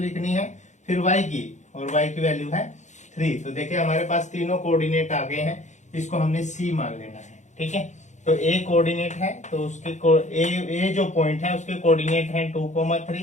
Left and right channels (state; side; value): late; right; 0.34 ms